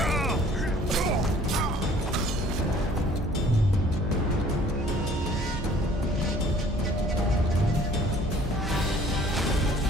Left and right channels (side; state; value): both; normal; correlation 0.55